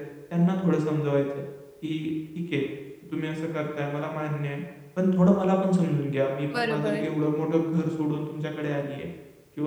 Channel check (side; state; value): both; identical; correlation 1.00